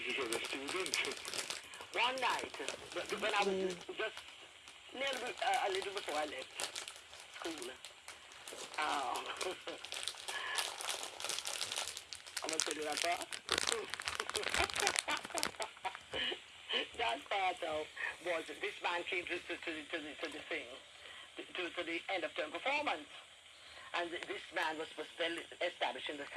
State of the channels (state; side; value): identical; both; correlation 1.00